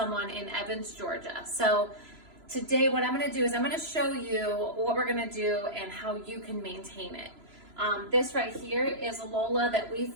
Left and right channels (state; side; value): late; left; 3.0 ms